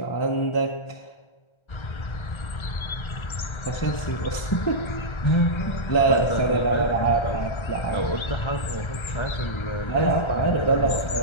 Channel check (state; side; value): late; right; 1.3 ms